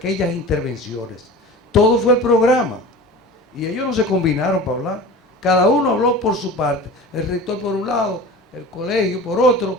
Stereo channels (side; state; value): both; normal; correlation 0.36